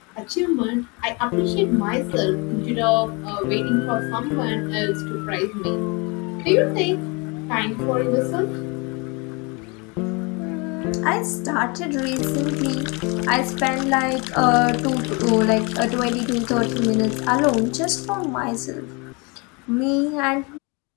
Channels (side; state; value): right; quieter; 29.5 dB